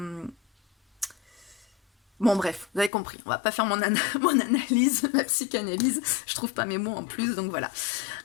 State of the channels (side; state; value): right; drops out; at 2.9 s